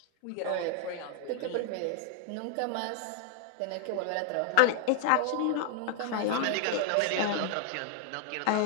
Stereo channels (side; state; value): both; different; correlation 0.00